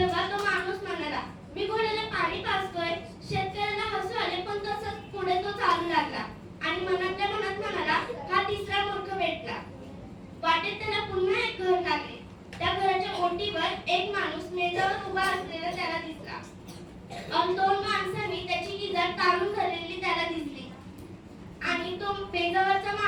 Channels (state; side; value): identical; both; correlation 1.00